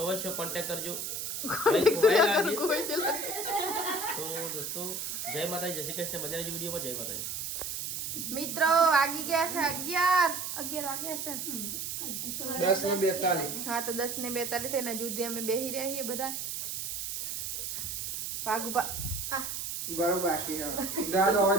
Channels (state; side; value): noise; right; hiss, 4 dB below the sound